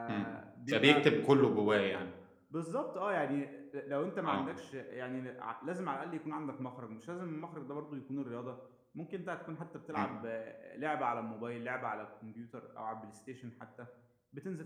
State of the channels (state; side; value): identical; both; correlation 1.00